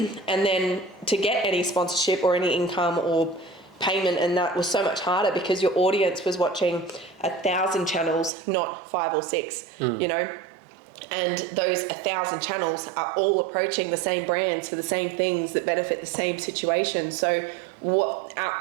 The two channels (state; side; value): drops out; left; at 8.3 s